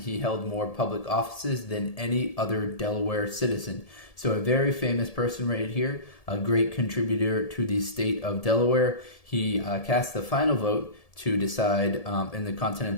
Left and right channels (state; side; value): late; right; 1.7 ms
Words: he held more public offices than any other Delaware citizen. So a very famous person right here, a great contributor to the state of Delaware. He cast the final vote to decide in the